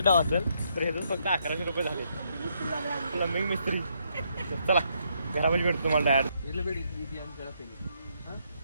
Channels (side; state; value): both; inverted; correlation -0.75